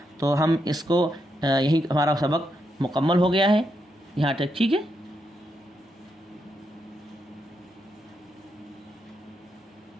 تو ہم اس کو یہی ہمارا سبق مکمل ہو گیا ہے یہاں تک، ٹھیک ہے۔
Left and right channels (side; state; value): both; normal; correlation 0.82